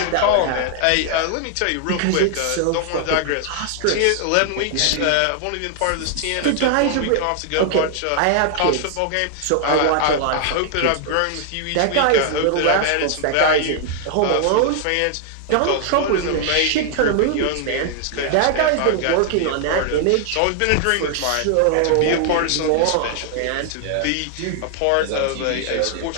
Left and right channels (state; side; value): different; both; correlation 0.00